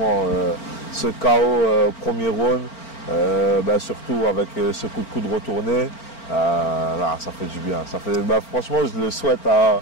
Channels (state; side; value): late; right; 4.4 ms